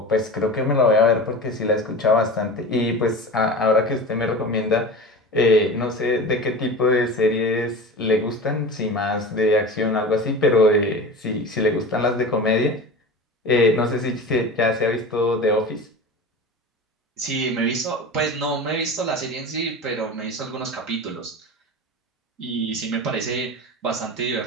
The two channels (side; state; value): both; normal; correlation 0.31